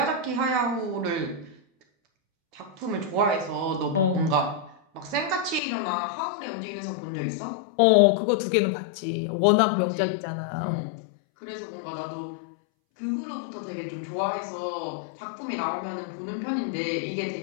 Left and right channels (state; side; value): drops out; right; at 5.6 s